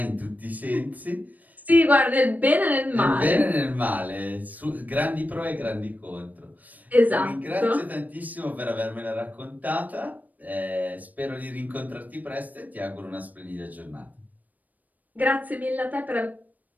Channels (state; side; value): late; left; 0.080 ms